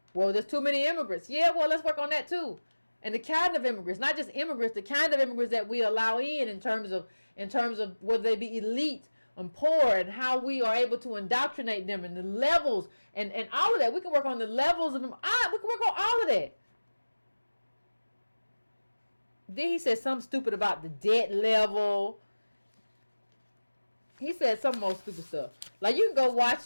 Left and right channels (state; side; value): inverted; both; correlation -1.00